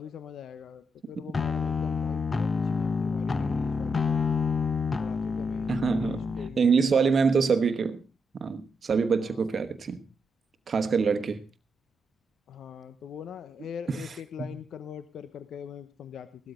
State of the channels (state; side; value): normal; both; correlation 0.82